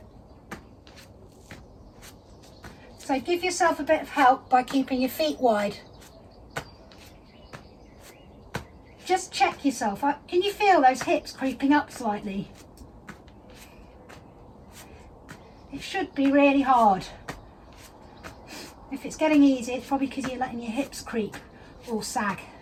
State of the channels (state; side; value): identical; both; correlation 1.00